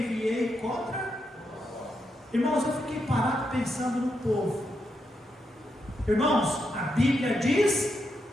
contra. Irmãos, eu fiquei parado pensando no povo. Irmãos, a Bíblia diz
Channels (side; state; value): both; normal; correlation 0.83